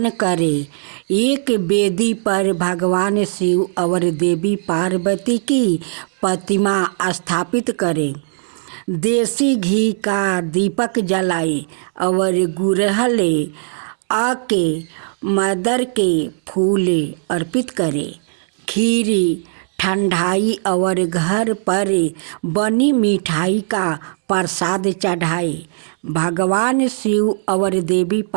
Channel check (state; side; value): silent; left; digital silence